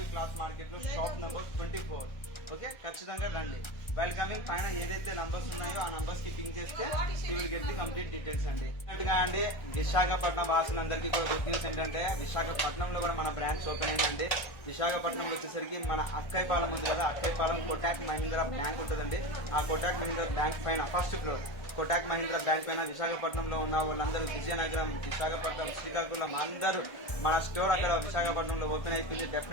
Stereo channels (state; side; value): late; right; 1.3 ms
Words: క్లాత్ మార్కెట్ లో షాప్ నంబర్ 24. ఓకే, ఖచ్చితంగా రండి. వెల్కమింగ్ పైన ఏదైతే నంబర్స్ ఉన్నాయో ఆ నంబర్స్ కి పింక్ చేస్తే you will get the complete details అండి. అన్నట్టుగా అండి విశాఖపట్నం వాసులందరికీ కూడా గుడ్ న్యూస్ ఏంటంటే విశాఖపట్నంలో కూడా మన బ్రాంచ్ ఓపెన్ అయిందండి. విశాఖపట్నం వచ్చేసరికి మన అక్కైపాలెం ఉంది కదా, అక్కైపాలెం కోటాక్ మహీంద్రా బ్యాంక్ ఉంటుందండి. ఆ కోటాక్ మహీంద్రా బ్యాంక్ పైన first floor Kotak Mahindra bank పైన విశాఖపట్నంలో ఉన్న వాళ్ళందరూ విజయనగరం, విశాఖపట్నం, శ్రీకాకుళం అందరూ మన స్టోర్ అక్కడ విశాఖపట్నంలో ఓపెన్ అయిపోయింది.